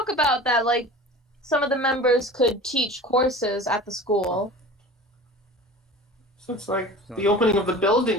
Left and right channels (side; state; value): both; normal; correlation 0.38